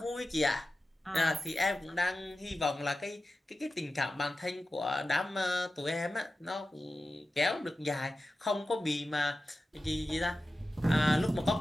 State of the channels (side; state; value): both; normal; correlation 0.93